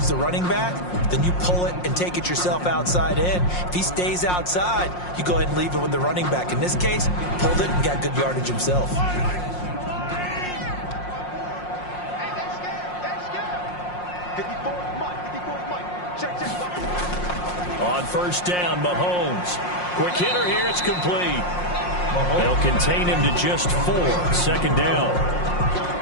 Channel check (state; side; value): late; right; 5.6 ms